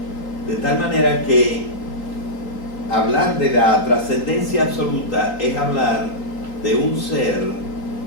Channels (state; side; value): late; right; 3.8 ms